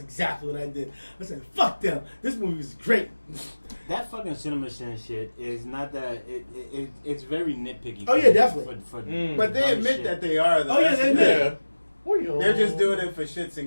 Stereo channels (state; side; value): inverted; both; correlation -1.00